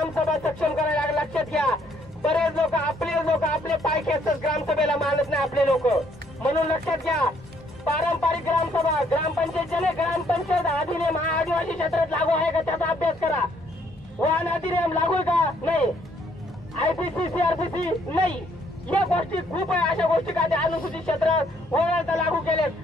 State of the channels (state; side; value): normal; both; correlation 0.67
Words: सक्षम करायला लागेल. लक्षात घ्या बरेच लोक आपले पाय खेचतात ग्रामसभेला मानत नाही आपले लोक. म्हणून लक्षात घ्या पारंपरिक ग्रामसभा ग्रामपंचायत अधिनियम हा आदिवासी क्षेत्रात लागू आहे का त्याचा अभ्यास करा. वाहन अधिनियम लागू आहे का नाही. IPC CRPC नाही, या गोष्टी खूप आहे. अशा गोष्टी काय अनुसूचित क्षेत्र वगळता लागू केलेत,